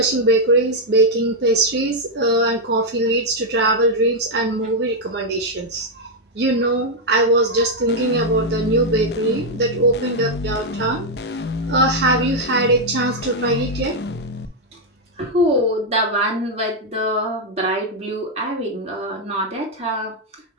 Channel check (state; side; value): normal; both; correlation 0.00